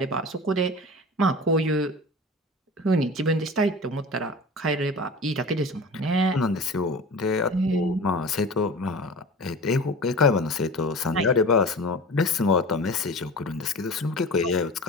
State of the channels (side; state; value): both; normal; correlation 0.35